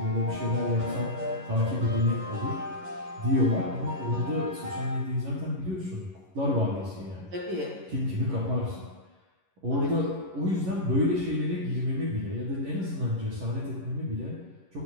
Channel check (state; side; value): late; left; 11 ms